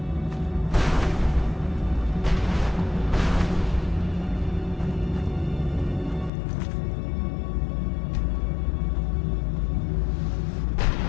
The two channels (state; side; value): drops out; right; at 6.3 s